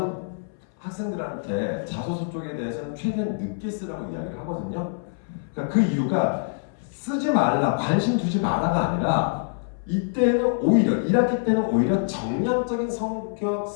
학생들한테 자소서 쪽에 대해서는 최대한 늦게 쓰라고 이야기를 하거든요. 그러니까 그 이유가 쓰지 말라, 관심 두지 마라가 아니라 이때는 오히려 1학기 때는 오히려 정량적인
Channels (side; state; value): right; silent; 62 dB below the other